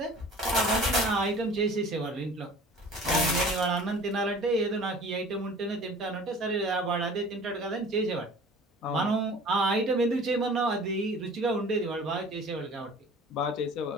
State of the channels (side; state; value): both; normal; correlation 0.45